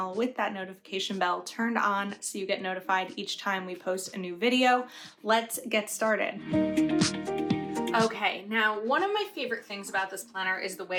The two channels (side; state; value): both; identical; correlation 1.00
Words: with that notification bell turned on so you get notified each time we post a new video. Let's get started. Okay, now one of my favorite things about this planner is the